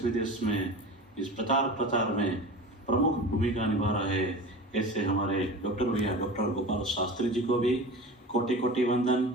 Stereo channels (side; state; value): both; normal; correlation 0.33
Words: विदेश में इस प्रचार में प्रमुख भूमिका निभा रहे ऐसे हमारे डॉक्टर भैया डॉक्टर गोपाल शास्त्री जी को भी कोटि कोटि